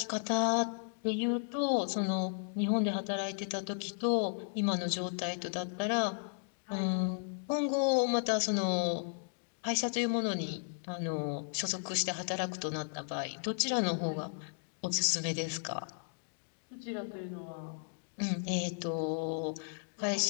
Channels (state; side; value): silent; right; digital silence